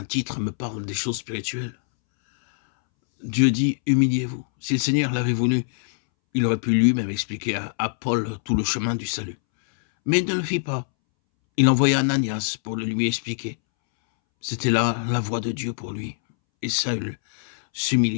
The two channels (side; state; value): right; silent; 63 dB below the other